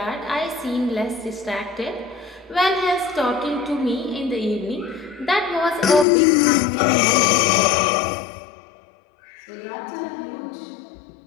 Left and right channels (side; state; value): right; drops out; at 6.1 s